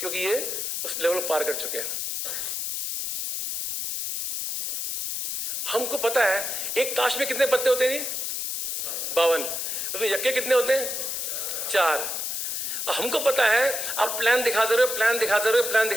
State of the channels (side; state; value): left; noise; hiss, 3 dB below the sound